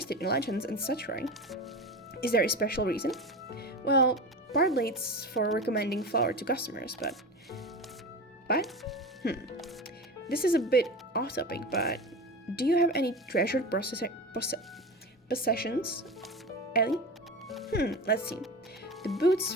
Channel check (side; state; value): both; normal; correlation 0.28